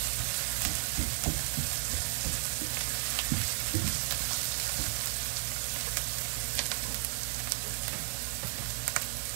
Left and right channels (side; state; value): left; silent; 55 dB below the other